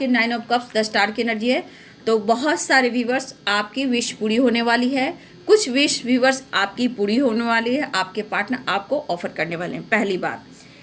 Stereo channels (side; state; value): both; identical; correlation 1.00